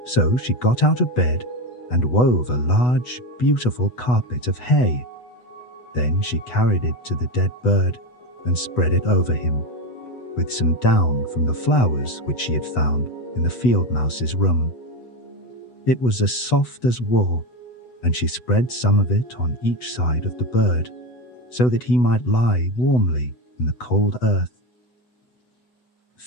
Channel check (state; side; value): late; right; 8.0 ms